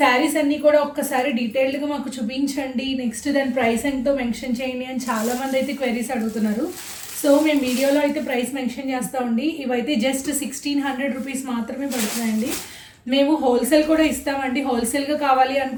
అన్నీ కూడా ఒక్కసారి డీటెయిల్డ్గా మాకు చూపించండి, నెక్స్ట్ దాని ప్రైస్ ఎంతో మెన్షన్ చేయండి అని చాలామంది అయితే క్వెరీస్ అడుగుతున్నారు. సో మేము వీడియోలో అయితే ప్రైస్ మెన్షన్ చేస్తామండి. ఇవైతే జస్ట్ 1600 రూపీస్ మాత్రమే పడుతున్నాయండి. మేము హోల్సేల్ కూడా ఇస్తామండి. హోల్సేల్గా కావాలి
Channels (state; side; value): identical; both; correlation 1.00